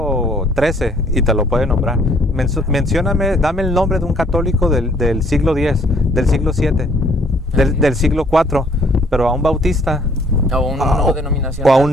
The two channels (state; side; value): normal; both; correlation 0.62